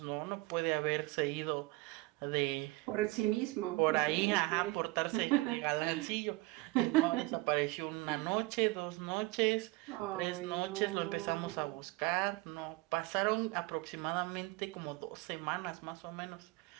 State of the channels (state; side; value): quieter; left; 22.3 dB